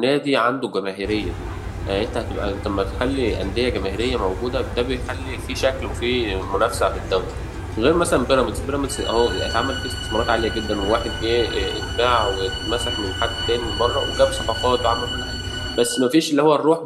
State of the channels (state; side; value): identical; both; correlation 1.00